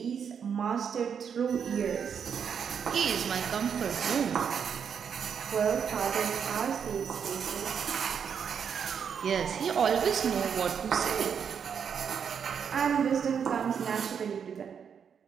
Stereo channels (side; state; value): left; quieter; 7.3 dB